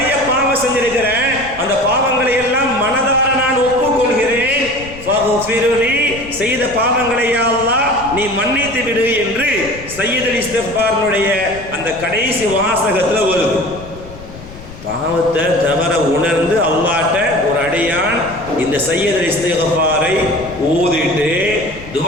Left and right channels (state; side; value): noise; left; rumble, 16 dB below the sound